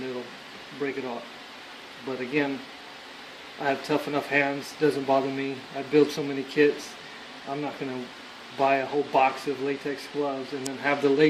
it'll break it off. But again, I have tough enough hands, doesn't bother me. I build so many kits, I'm not going to buy a whole box of latex gloves and then have the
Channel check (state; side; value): identical; both; correlation 1.00